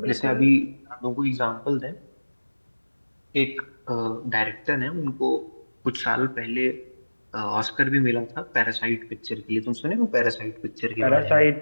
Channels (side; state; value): both; inverted; correlation -1.00